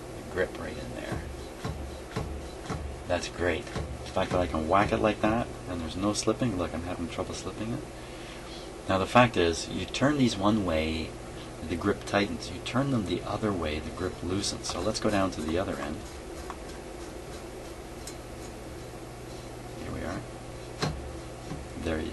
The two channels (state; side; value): identical; both; correlation 1.00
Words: The grip right in there. That's great. The fact that I can whack it like that and there's no slipping. Look, I'm having trouble slipping it. Now the fact is, you turn these one way, the grip tightens. You turn them the other way, the grip loosens. So let's go down to the other end. Here we are. There, you